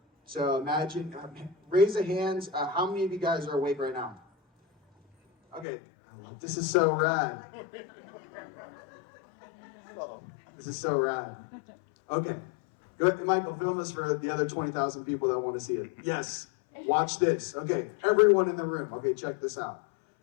So imagine, raise the hands. How many of you guys are awake right now? Okay, this is so rad. This is so rad. Okay, good. Michael, film this for the other 20,000 people that want to see it. Yes, watch this. Okay, everyone in the room. Okay, check this out.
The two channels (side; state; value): right; drops out; at 5.7 s